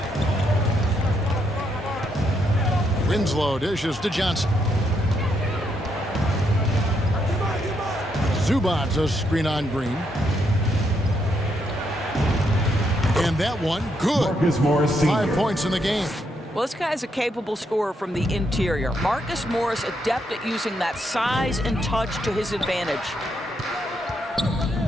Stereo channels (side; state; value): both; normal; correlation 0.77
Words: Winslow dishes to Johnson. Zubac a screen on Green. And that one, good. Marcus Morris Sr. 5 points in the game. Well, this guy's a capable scorer from the interior. Marcus Morris adept at using that size and touch to his advantage.